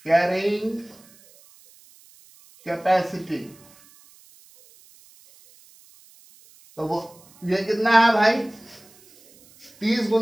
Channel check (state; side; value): noise; right; hiss, 27 dB below the sound